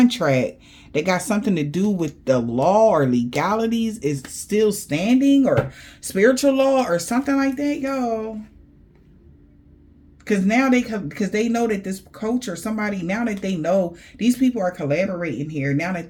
that got something to do with the law or legalities is still standing, or spiritual law or something like that, y'all. Because now because they know that this coach or somebody, now that they know these people are collaborating here, now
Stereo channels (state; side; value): identical; both; correlation 1.00